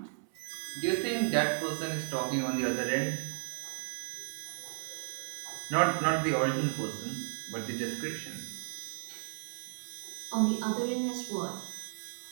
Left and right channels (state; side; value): silent; left; 55 dB below the other